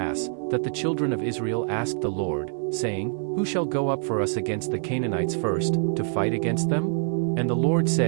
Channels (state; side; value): silent; left; 55 dB below the other